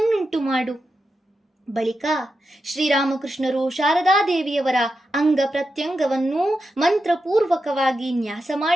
ಮಾಡು. ಬಳಿಕ ಶ್ರೀರಾಮಕೃಷ್ಣರು ಶಾರದಾದೇವಿಯವರ ಅಂಗ ಪ್ರತ್ಯಂಗವನ್ನು ಮಂತ್ರಪೂರ್ವಕವಾಗಿ ನ್ಯಾಸ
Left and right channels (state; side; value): normal; both; correlation 0.88